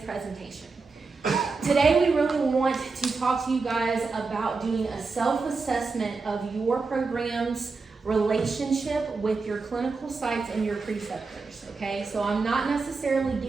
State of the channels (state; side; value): quieter; left; 4.3 dB